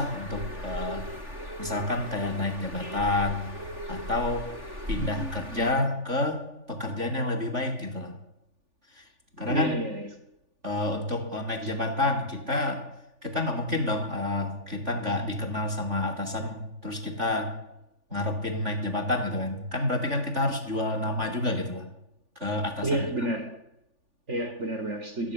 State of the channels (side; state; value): left; late; 3.4 ms